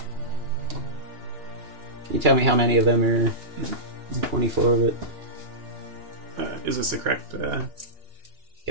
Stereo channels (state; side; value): late; left; 2.9 ms